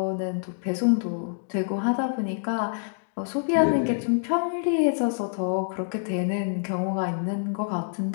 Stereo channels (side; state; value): right; silent; digital silence